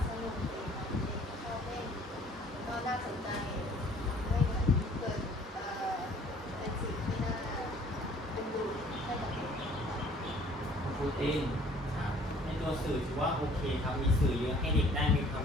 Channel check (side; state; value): both; normal; correlation 0.55